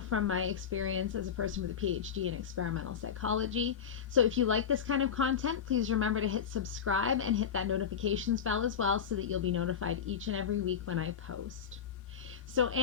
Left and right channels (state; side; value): quieter; right; 7.7 dB